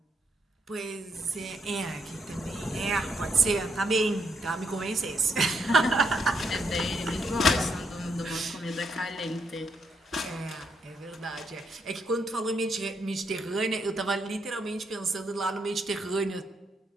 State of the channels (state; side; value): normal; both; correlation 0.76